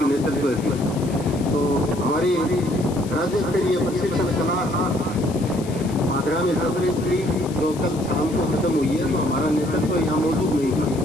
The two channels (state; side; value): noise; left; hiss, 17 dB below the sound